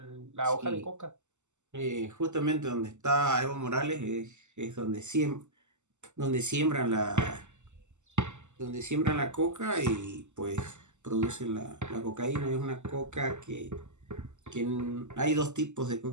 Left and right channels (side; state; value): left; late; 0.84 ms